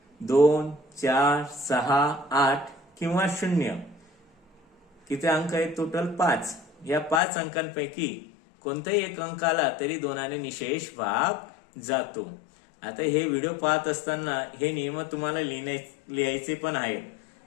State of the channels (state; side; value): drops out; right; at 7.2 s